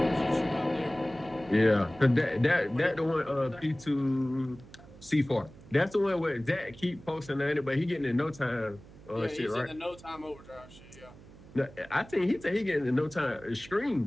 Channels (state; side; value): noise; right; hum, 20 dB below the sound